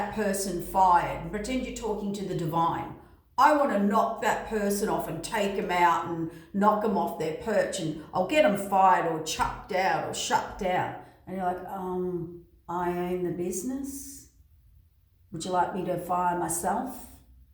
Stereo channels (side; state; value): both; identical; correlation 1.00